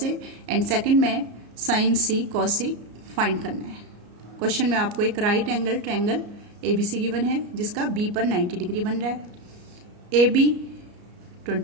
A and second में sin C cos C find करना है। Question में आपको एक right angle triangle ABC given है जिसका B पर 90 degree बन रहा है। AB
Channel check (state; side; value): late; left; 34 ms